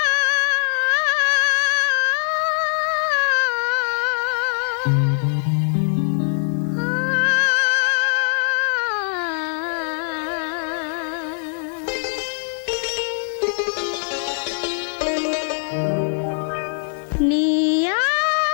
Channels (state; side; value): silent; right; digital silence